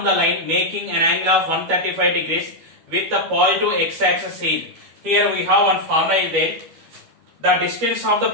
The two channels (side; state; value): left; late; 12 ms